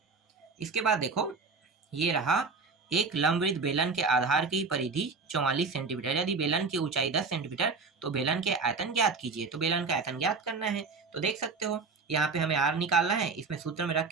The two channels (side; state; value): left; quieter; 4.6 dB